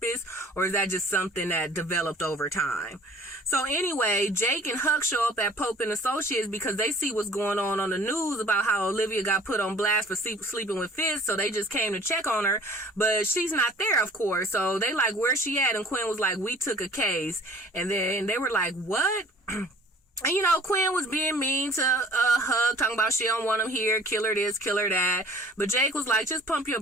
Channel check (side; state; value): both; normal; correlation 0.50